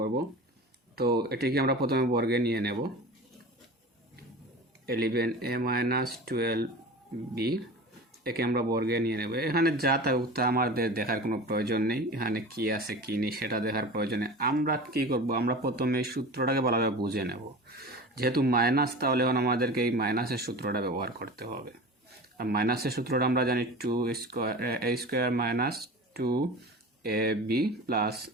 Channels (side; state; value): both; normal; correlation 0.34